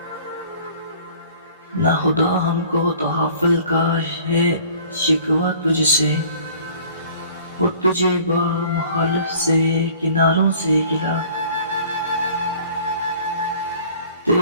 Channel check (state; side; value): inverted; both; correlation -0.50